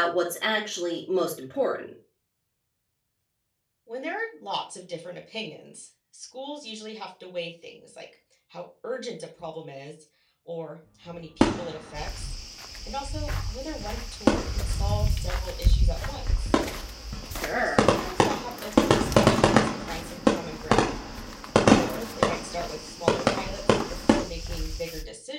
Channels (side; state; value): both; identical; correlation 1.00